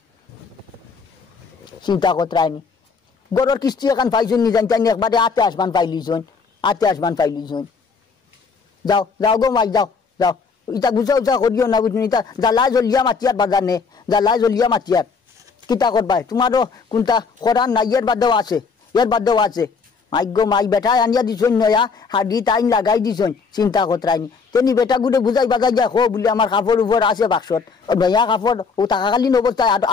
চিন্তা করতে গরর কিস্তি এখন পাইছুন নি জানি একবারে 28 মান পাইলিছুন যাও যাও গো মাই যাও ইটা গুছা করিও না বুঝুন ইটা জ্বালা জলিয়া মাতিয়ার বাজার নে জ্বালা জলিয়া মাতিয়ার কিতা করবাই তোমারও কোনটা করার নাই এর বাদেও আছে মাই গো মাই বেটা আনিয়া দিছন নয়া হাডি টাইম লাগাই দিছন চিন্তা করতে তেনি বেটা গুড়ে বুঝাই বাজাই যা হো বলে আমার কাপড় উপর আছে বাক্সত নয়া কাপড় ও টাকাকালীন অবস্থায়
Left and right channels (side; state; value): right; quieter; 5.1 dB